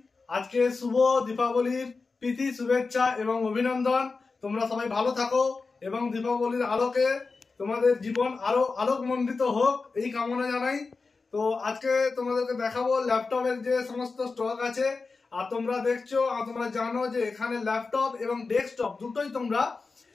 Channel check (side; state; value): right; quieter; 4.2 dB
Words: আজকে শুভ দীপাবলির প্রীতি শুভেচ্ছা এবং অভিনন্দন। তোমরা সবাই ভালো থাকো এবং দীপাবলির আলোকে তোমাদের জীবন আরো আলোকমণ্ডিত হোক এই কামনা জানাই। তো আজকে তোমাদেরকে দেখাবো ল্যাপটপের যে সমস্ত স্টক আছে। আর তোমরা দেখছো আর তোমরা জানো যে এখানে ল্যাপটপ এবং ডেস্কটপ দুটোই তোমরা